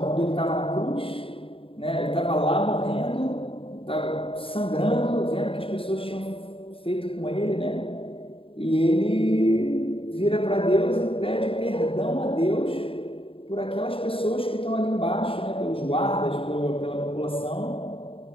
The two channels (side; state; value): right; late; 0.27 ms